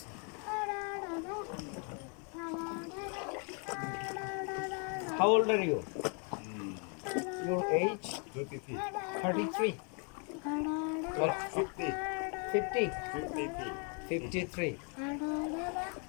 How old are you? Your age? 33. 33 or 50. 50? 53. 53.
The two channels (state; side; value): quieter; right; 38.2 dB